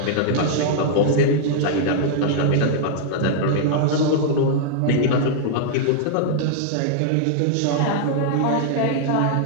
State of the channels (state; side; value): different; both; correlation -0.01